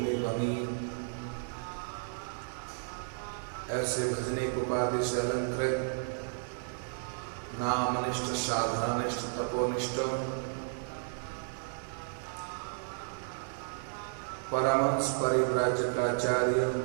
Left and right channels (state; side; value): silent; left; digital silence